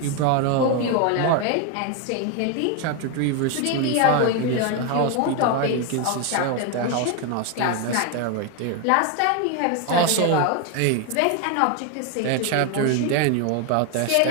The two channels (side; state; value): both; different; correlation 0.01